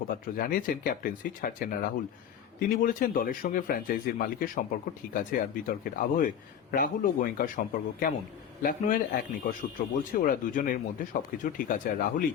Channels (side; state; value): right; quieter; 8.7 dB